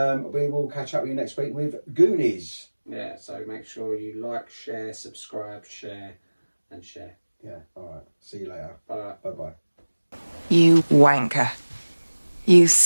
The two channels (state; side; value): inverted; both; correlation -1.00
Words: We will catch up with you next week with Goonies. Yeah. So make sure you like, share, subscribe, share, and share. Yeah. All right. See you later. Bye. Bye-bye. You wanker. You